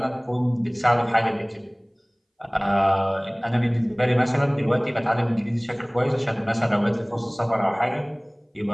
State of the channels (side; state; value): both; identical; correlation 1.00